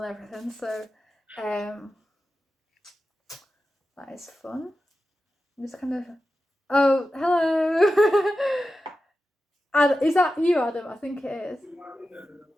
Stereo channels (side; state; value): both; normal; correlation 0.92